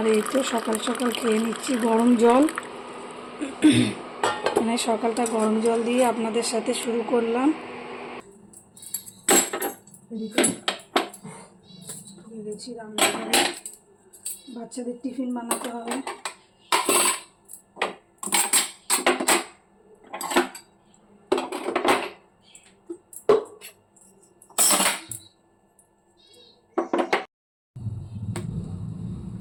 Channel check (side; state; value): both; identical; correlation 1.00